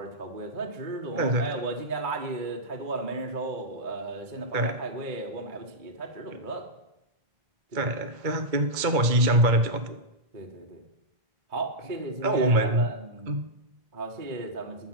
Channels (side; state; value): left; late; 2.2 ms